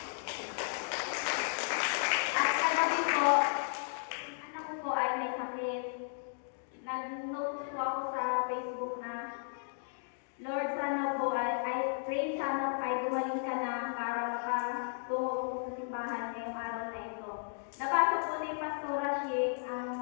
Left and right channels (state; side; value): silent; right; digital silence